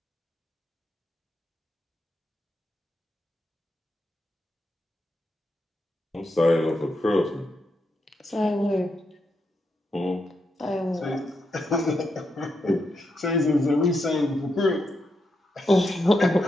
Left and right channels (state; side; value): normal; both; correlation 0.83